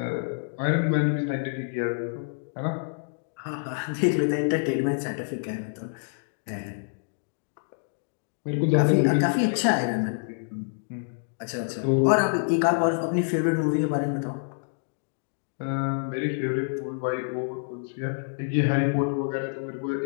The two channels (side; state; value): right; silent; digital silence